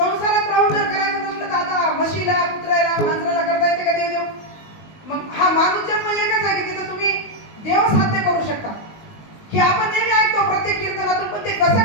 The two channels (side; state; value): right; late; 19 ms